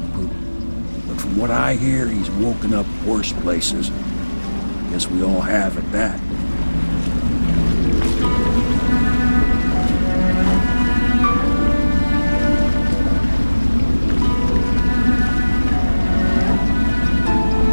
poop. But from what I hear, he's woken up worse places. Guess we all have at that.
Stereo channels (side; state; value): both; inverted; correlation -1.00